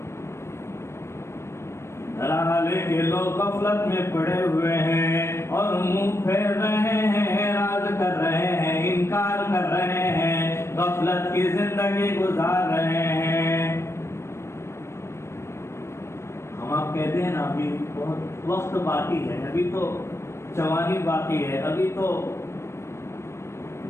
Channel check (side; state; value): right; late; 0.13 ms